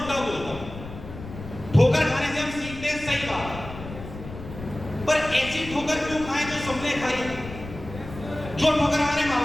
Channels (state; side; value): noise; left; rumble, 12 dB below the sound